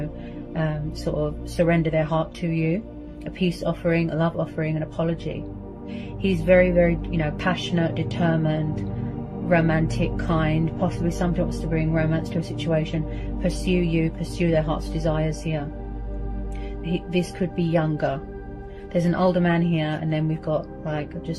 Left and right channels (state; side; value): identical; both; correlation 1.00